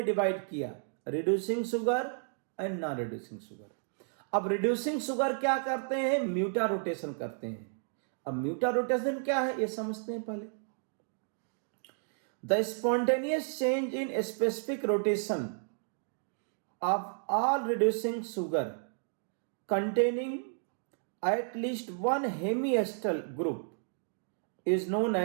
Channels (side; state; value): left; silent; digital silence